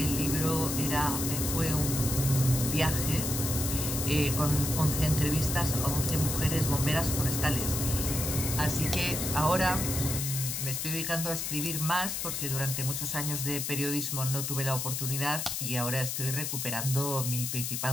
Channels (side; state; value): left; noise; hiss, 2 dB below the sound